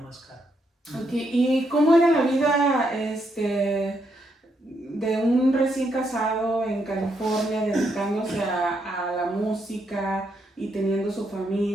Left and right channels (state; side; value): normal; both; correlation 0.78